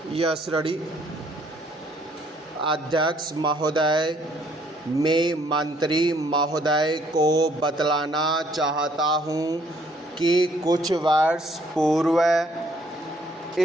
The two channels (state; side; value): normal; both; correlation 0.65